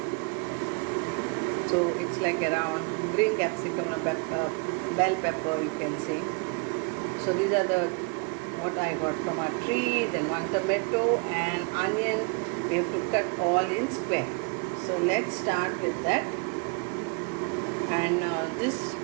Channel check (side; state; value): left; quieter; 33.7 dB